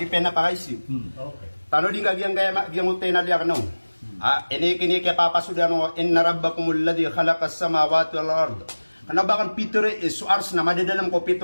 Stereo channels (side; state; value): both; inverted; correlation -1.00